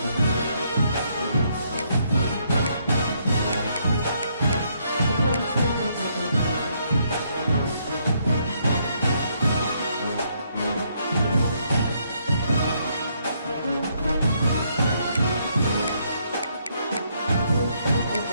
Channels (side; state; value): both; inverted; correlation -0.72